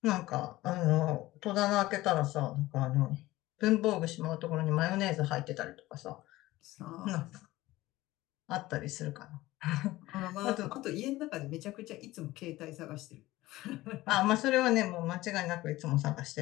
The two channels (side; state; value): right; quieter; 17.7 dB